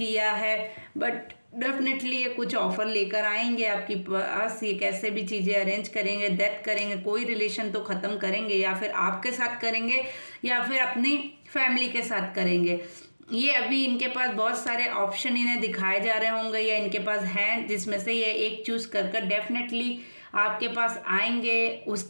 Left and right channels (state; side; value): inverted; both; correlation -1.00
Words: है, बट डेफिनेटली ये कुछ ऑफर लेकर आएंगे आपके पास, ये कैसे भी चीज़ें अरेंज करेंगे, डेथ करेंगे, कोई रिलेशन तो ख़त्म करेंगे, या फिर आपके साथ करेंगे या फिर अपनी फैमिली के साथ करेंगे। ये अभी इनके पास बहुत सारे ऑप्शन इन्हें दिखाए जा रहे होंगे या इनके पास हैं, जिसमें से ये एक चूज़ कर डेफिनेटली आपके पास आएंगे,